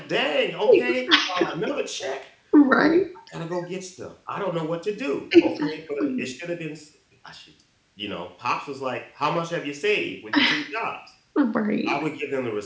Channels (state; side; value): identical; both; correlation 1.00